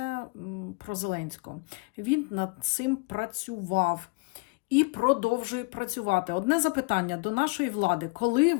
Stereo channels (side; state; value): right; quieter; 30.3 dB